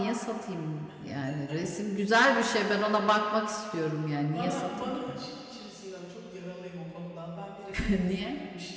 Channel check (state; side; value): identical; both; correlation 1.00